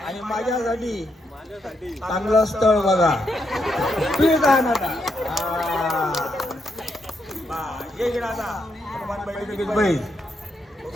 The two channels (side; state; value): both; normal; correlation 0.80